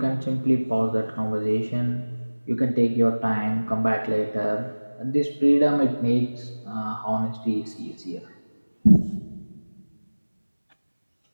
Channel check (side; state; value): both; inverted; correlation -1.00